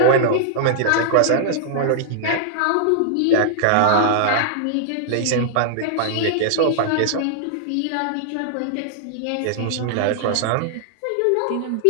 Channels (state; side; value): different; both; correlation -0.01